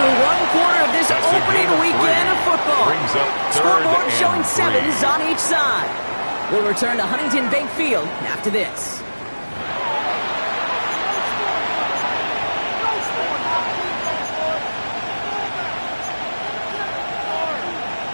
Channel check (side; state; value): both; inverted; correlation -1.00